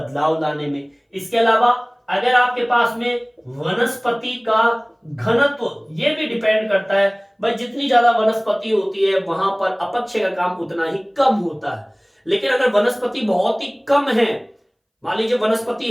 लाने में। इसके अलावा अगर आपके पास में वनस्पति का घनत्व, ये भी डिपेंड करता है भाई, जितनी ज्यादा वनस्पति होती है वहां पर अपक्षय का काम उतना ही कम होता है। लेकिन अगर वनस्पति बहुत ही कम है, मान लीजिए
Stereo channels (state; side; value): identical; both; correlation 1.00